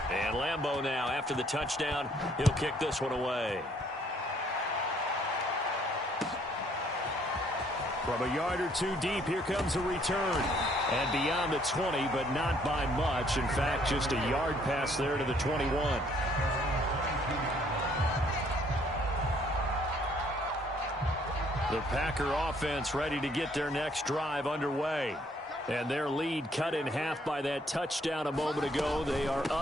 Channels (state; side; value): normal; both; correlation 0.64